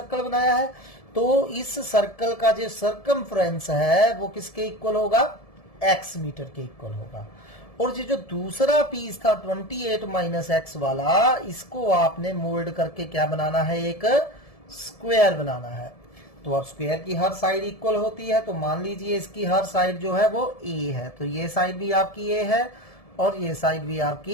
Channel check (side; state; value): right; late; 1.7 ms